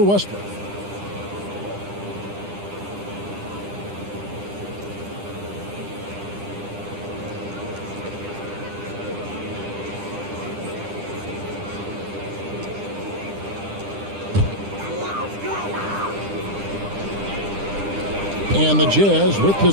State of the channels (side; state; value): left; late; 10 ms